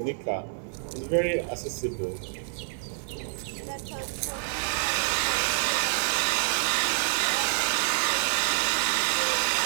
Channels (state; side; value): silent; left; digital silence